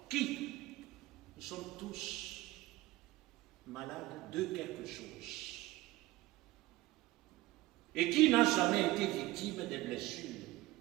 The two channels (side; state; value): left; quieter; 18.4 dB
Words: Qui? Nous sommes tous malades de quelque chose. Et qui n'a jamais été victime des blessures